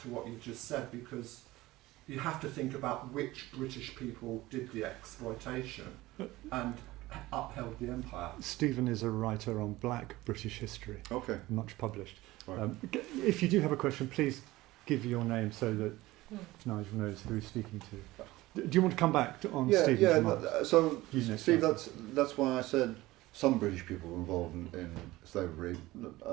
to what you just said, because you have to think about which British people did the exploitation and upheld the empire. Stephen is a writer on black British history, Okay. much published. Right. If you do have a question, please give your name so that Nigel knows who he's speaking to. Do you want to come back on Stephen's remarks? So, You next, Steve, Nigel. that's why I said some British people were involved in slavery.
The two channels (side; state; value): left; quieter; 18.4 dB